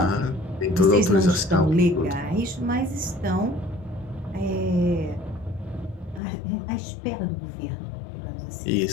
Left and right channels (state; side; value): drops out; right; at 6.2 s